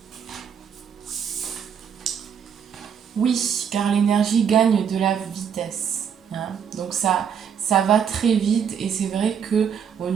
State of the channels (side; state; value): left; quieter; 7.7 dB